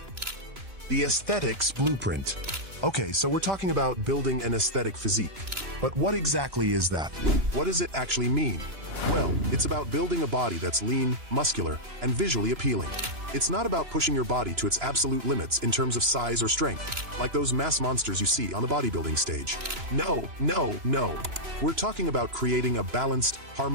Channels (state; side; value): late; left; 2.9 ms